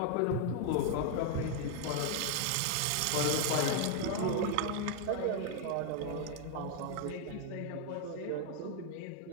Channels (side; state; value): both; different; correlation 0.00